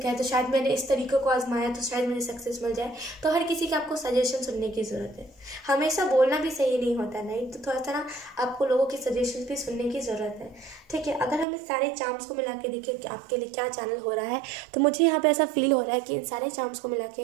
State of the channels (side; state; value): left; drops out; at 11.5 s